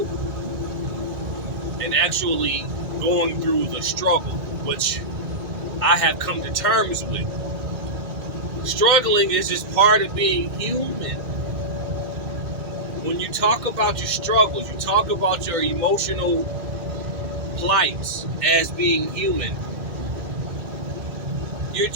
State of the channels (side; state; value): left; late; 2.1 ms